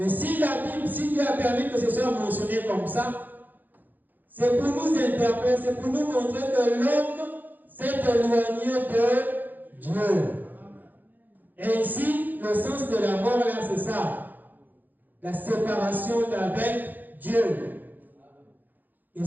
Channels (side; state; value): left; late; 0.086 ms